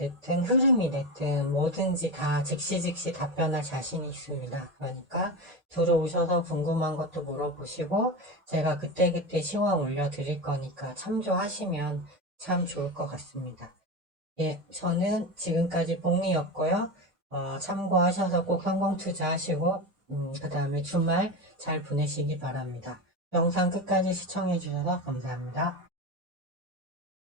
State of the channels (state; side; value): late; left; 2.3 ms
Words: 흐름이 됐든 뭐든지 다 즉시 답변할 자신이 있습니다. 그러니까 들어오셔서 궁금한 것도 물어보시고 제가 그때그때 시황 올려드릴 거니까 참조하시면 참 좋을 것 같습니다. 예, 저는 지금까지 복리였고요. 참고하셔서 꼭 성공 투자하시고 그 다음에 주말 잘 보내시기 바랍니다. 영상 끝까지 시청해주셔서 감사합니다.